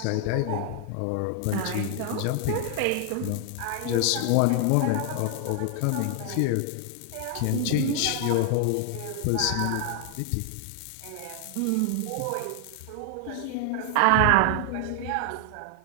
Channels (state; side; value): different; both; correlation 0.00